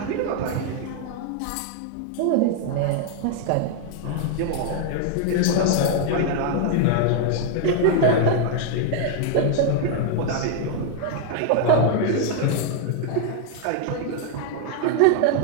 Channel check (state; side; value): different; both; correlation 0.00